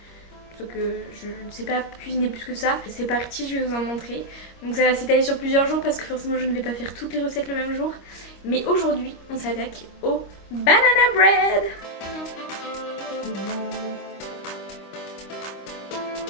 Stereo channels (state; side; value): late; right; 25 ms